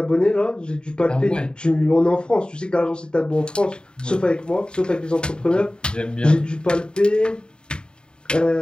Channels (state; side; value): late; right; 0.050 ms